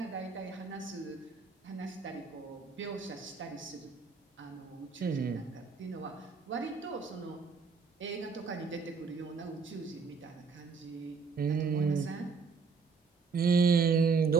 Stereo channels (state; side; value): quieter; left; 5.0 dB